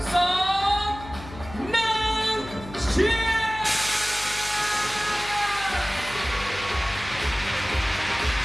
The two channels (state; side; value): noise; left; hum, 14 dB below the sound